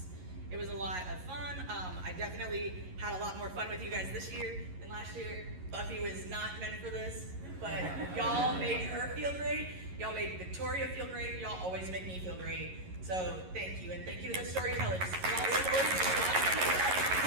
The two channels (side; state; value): left; late; 11 ms